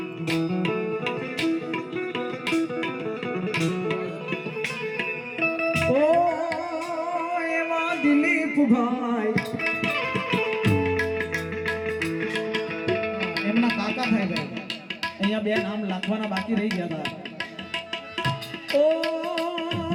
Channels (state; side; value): identical; both; correlation 1.00